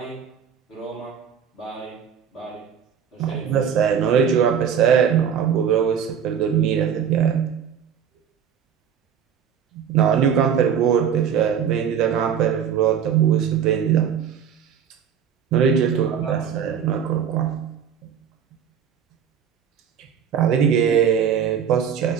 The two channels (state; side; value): quieter; left; 8.0 dB